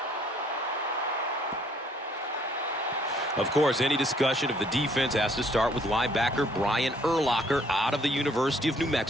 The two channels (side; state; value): both; normal; correlation 0.63